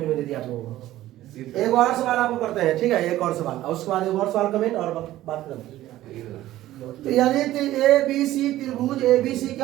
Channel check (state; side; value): quieter; left; 14.8 dB